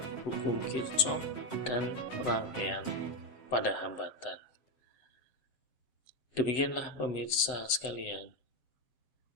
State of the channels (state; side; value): late; right; 7.9 ms